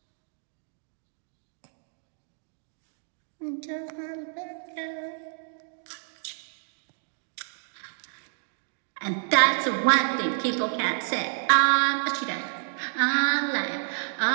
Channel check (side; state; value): left; silent; digital silence